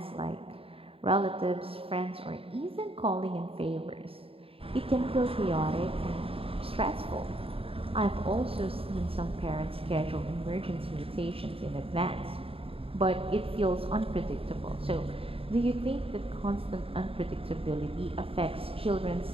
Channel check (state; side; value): late; left; 0.27 ms